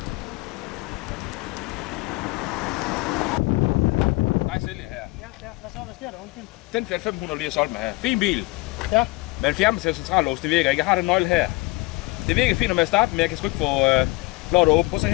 Nej, sælger her. Ja, hvad sker der? Undskyld. Den Fiat 500 lige har solgt mig her. Fin bil. Ja. Men fjernbetalt centrallås, det virker ikke. Jeg har den nøgle her. Det virker fint, når jeg starter, men jeg kan sgu ikke få lov at åbne. Prøv at se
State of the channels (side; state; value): right; quieter; 22.6 dB